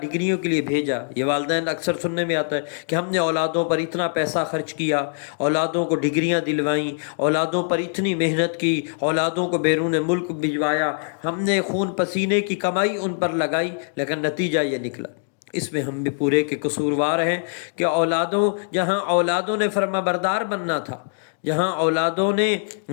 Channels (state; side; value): silent; right; digital silence